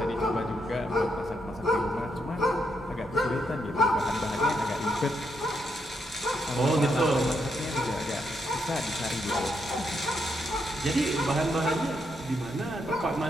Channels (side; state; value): both; normal; correlation 0.79